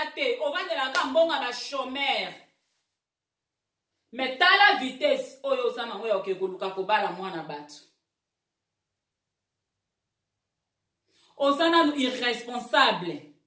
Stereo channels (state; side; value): identical; both; correlation 1.00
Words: te ovandelaka mbongo ba chômeur mais tala vitesse oyo oza nango ya koluka kobala mwana bato oza nanu irresponsable